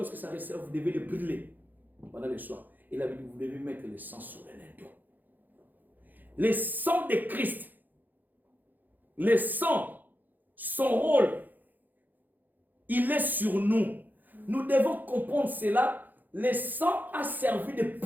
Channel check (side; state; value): left; late; 0.086 ms